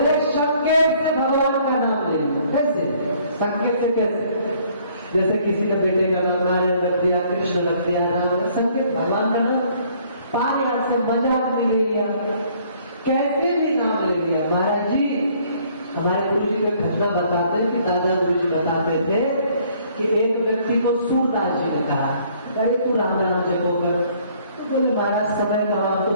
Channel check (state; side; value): inverted; both; correlation -0.61